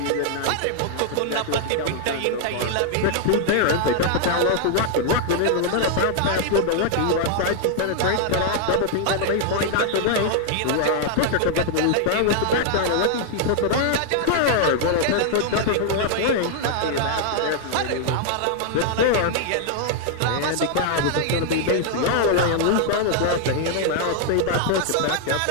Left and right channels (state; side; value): different; both; correlation 0.00